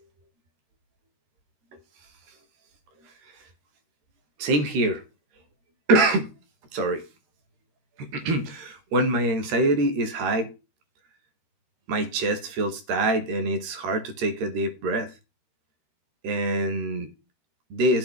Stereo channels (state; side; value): late; left; 13 ms